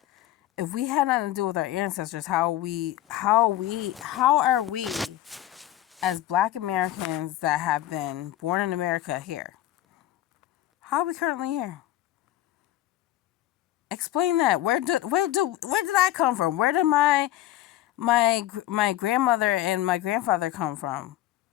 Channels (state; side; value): quieter; right; 13.9 dB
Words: if we had nothing to do with our ancestors, how are we as black Americans that have been born in America here? How are we currently here? Explain that. Where did I come from? Where did my grandmother and my grandfather come from?